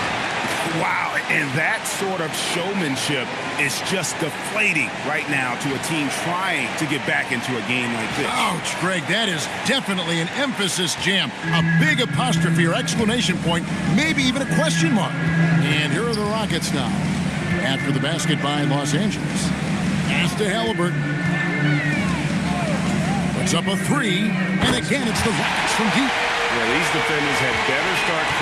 Wow, and that sort of showmanship is just deflating right now to a team trying to get back into a game like this. Ouch, Greg, that is definitely an emphasis jam. A big apostrophe or exclamation point, maybe even a question mark. And here are the Rockets now. After the basket by Los Angeles. Pass to Halliburton. Puts up a 3, and again it's the Rockets from deep. Yeah, these defenders had better start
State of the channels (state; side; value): identical; both; correlation 1.00